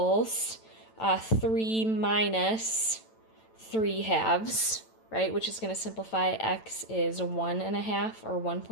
3 minus 3/2, right? Which is going to simplify. X is 1.5 or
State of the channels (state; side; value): late; right; 9.0 ms